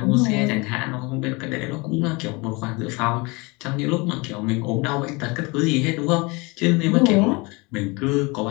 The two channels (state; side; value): quieter; right; 26.5 dB